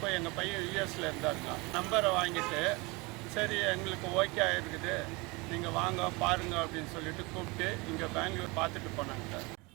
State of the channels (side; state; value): left; quieter; 26.1 dB